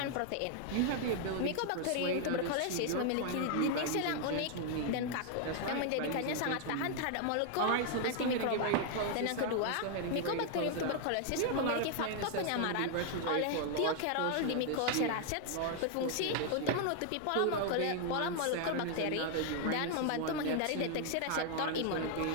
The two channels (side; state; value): both; different; correlation 0.00